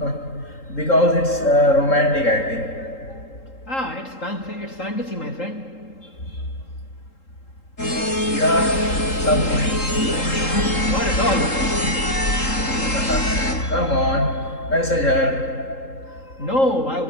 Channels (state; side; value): late; right; 3.8 ms